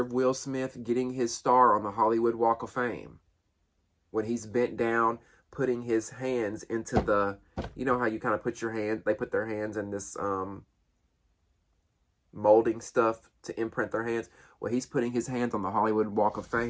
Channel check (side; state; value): both; identical; correlation 1.00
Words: Will Smith getting his star on the Hollywood Walk of Fame. When he's bent down, putting his hands into the... You know how you kind of put your hand... They put their hands in this molding stuff to imprint their hands. Well, he's putting his hands on the Hollywood Walk of